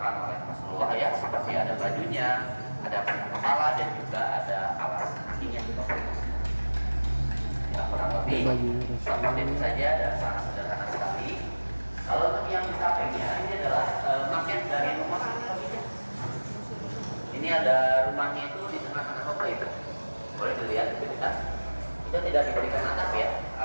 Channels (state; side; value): inverted; both; correlation -1.00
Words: oleh Rasulullah ya, seperti ada bajunya, ada pelindung kepala, dan juga ada alas kakinya. Ya, kurang lebih seperti itu saja dan sangat sederhana sekali. Kalau untuk yang di sampingnya ini adalah maket dari rumah Siti Khadijah. Ini ada rumahnya itu di tengah-tengah Bapak Ibu. Boleh dilihat lebih dekat. Kita tidak diberikan atap ya,